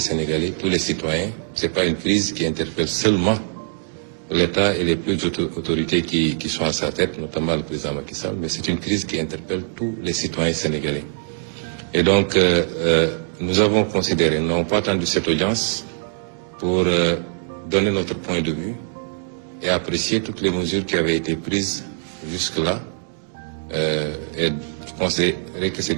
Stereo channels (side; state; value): left; silent; digital silence